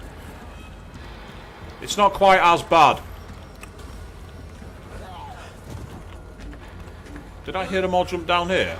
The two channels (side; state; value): both; identical; correlation 1.00